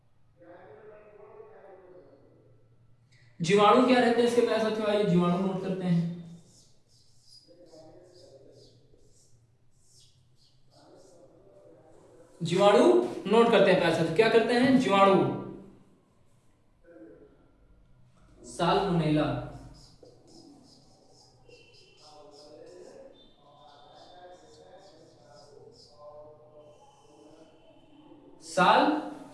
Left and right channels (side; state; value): both; identical; correlation 1.00